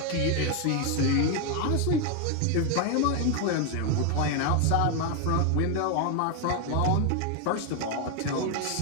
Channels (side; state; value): both; different; correlation 0.01